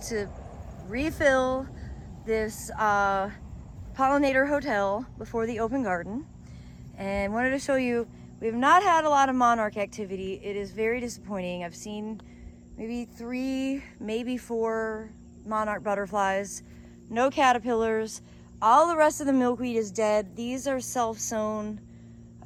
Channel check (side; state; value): both; identical; correlation 1.00